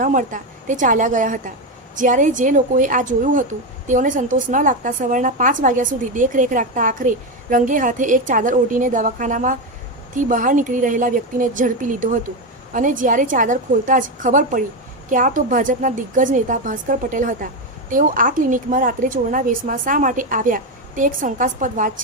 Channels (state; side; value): normal; both; correlation 0.12